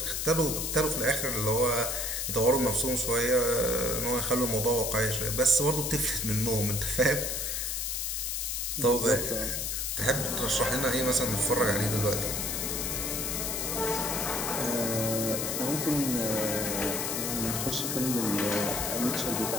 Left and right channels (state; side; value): noise; left; hiss, 1 dB below the sound